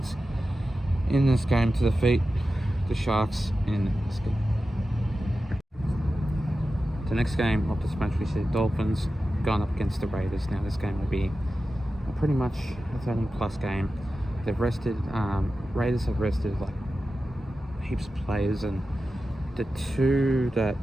in this game to defeat the Sharks in this game. The next game of this match, we see the Dolphins going up against the Raiders. Now this game will be pretty much a 13+ game. They've rested, Raiders have rested like heaps of players, and the two that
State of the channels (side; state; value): both; normal; correlation 0.93